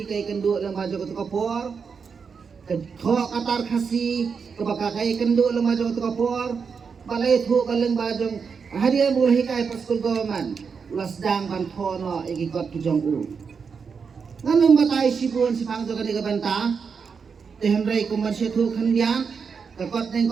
kai kendu lang bajo ke kapor ke tho katar khasi ke baka kai kendu lang bajo ke kapor balai thu kaleng bajo hadiah bola hikai pa school government ulas sedang ban thono ikikot kijong nganum batai sibun sipang joga ni banta tehenrai komersial thu khandian kakot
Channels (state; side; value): quieter; left; 5.8 dB